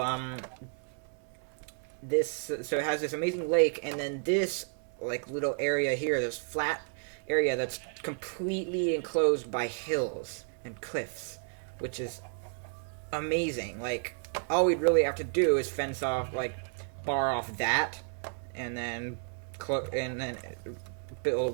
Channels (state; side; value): silent; left; 56 dB below the other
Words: so it has this amazing lake, and then this like little area here, this flat area that's completely enclosed by hills and cliffs, which is amazing. Like, all we'd really have to do is fence off, like, bar off that, and then build a